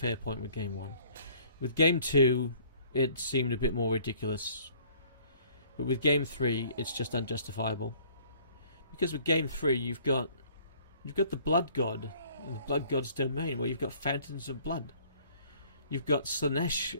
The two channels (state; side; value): inverted; both; correlation -0.56